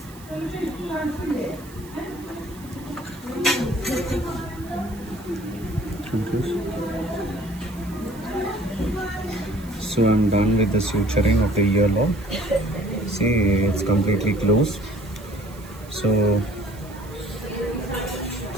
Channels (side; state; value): right; noise; hiss, 22 dB below the sound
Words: So I'm done with the suturing of the earlobe. See, it's completely closed. So